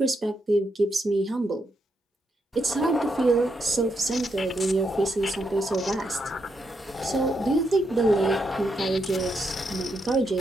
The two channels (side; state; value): both; normal; correlation 0.80